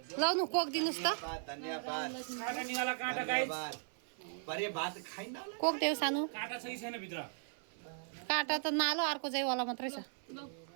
लाउनु कोक दिनुहोस् त कोक देऊ सानो काँटा त नालो अर्को चाहिँ वाला मात्रै छ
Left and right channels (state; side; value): silent; left; 53 dB below the other